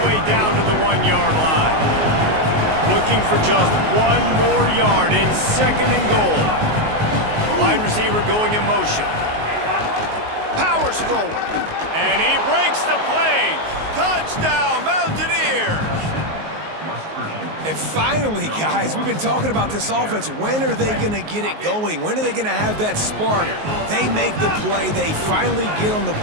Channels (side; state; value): left; late; 19 ms